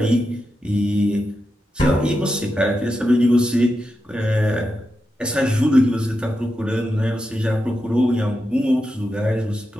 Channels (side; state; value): both; normal; correlation 0.88